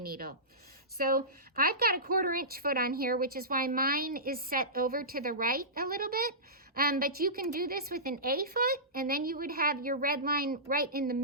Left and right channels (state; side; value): normal; both; correlation -0.19